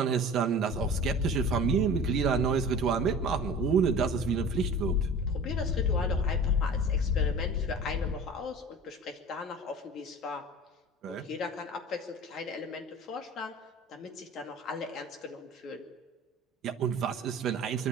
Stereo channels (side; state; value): both; normal; correlation 0.40